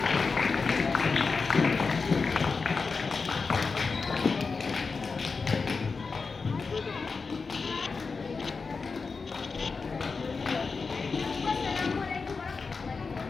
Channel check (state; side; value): quieter; right; 4.6 dB